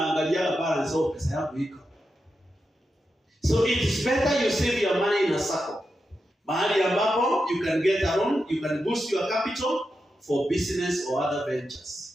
balance au pesa yako iko. So it is better you save your money in a circle. Mahali ambapo you can get a loan, you can boost your capital for business or other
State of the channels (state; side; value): normal; both; correlation 0.88